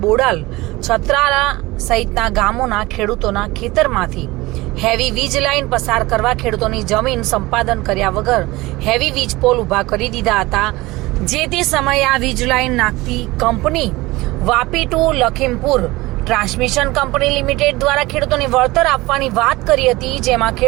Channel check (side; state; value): left; quieter; 20.5 dB